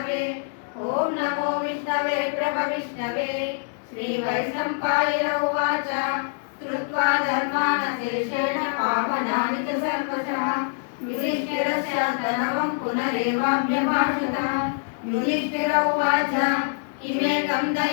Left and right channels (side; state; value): right; silent; digital silence